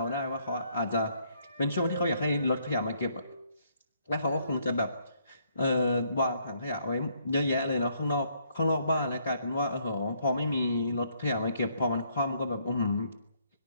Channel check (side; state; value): both; inverted; correlation -0.70